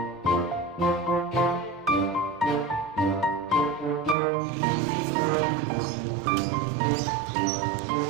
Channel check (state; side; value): drops out; left; at 4.2 s